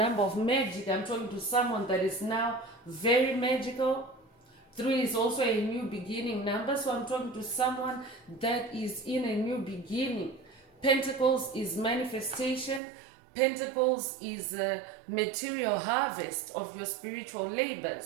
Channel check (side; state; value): left; drops out; at 12.8 s